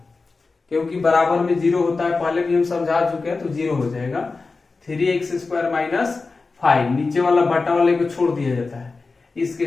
क्योंकि बराबर में 0 होता है, पहले भी हम समझा चुके हैं, तो 0 हो जाएगा। 3x² माइनस 5 नीचे वाला बटा वाले को छोड़ दिया जाता है, इसके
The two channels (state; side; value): quieter; right; 4.0 dB